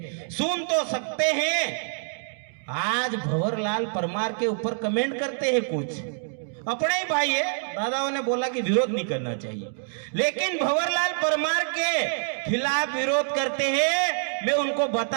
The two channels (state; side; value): silent; left; digital silence